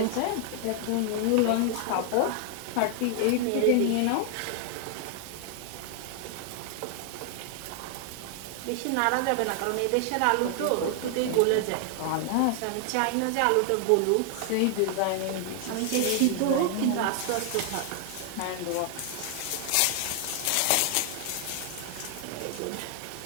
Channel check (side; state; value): both; different; correlation 0.00